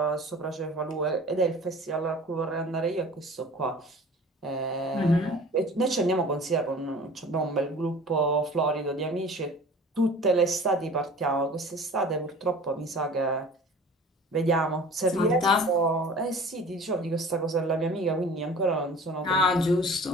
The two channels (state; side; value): normal; both; correlation 0.43